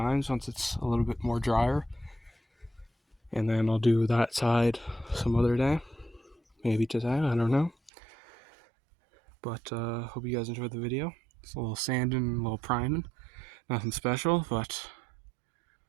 once it's a little bit more drier. And then I'll do that side some other day. Maybe today, I don't know. But hope you guys enjoyed the video. It's a little sanding, a little priming. Nothing special, but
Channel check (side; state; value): left; drops out; at 7.9 s